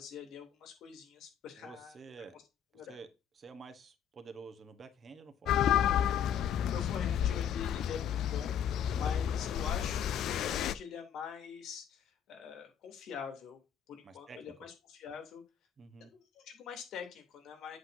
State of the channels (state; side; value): quieter; right; 9.1 dB